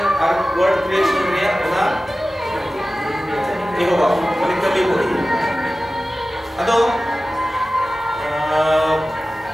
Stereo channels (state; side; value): normal; both; correlation 0.96